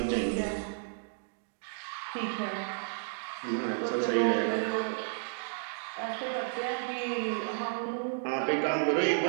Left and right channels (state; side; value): silent; left; digital silence